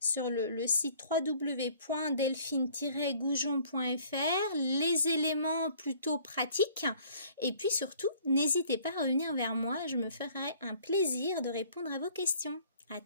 le site www.delphine-goujon.fr les éléments plutôt pratiques et puis surtout, n'hésitez pas à revenir vers moi, je me ferai un plaisir de répondre à vos questions. À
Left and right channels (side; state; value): both; inverted; correlation -0.56